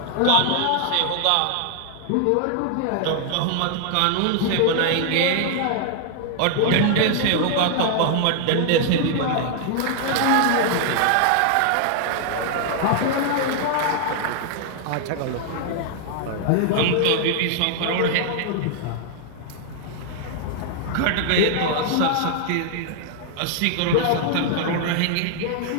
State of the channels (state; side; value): different; both; correlation 0.00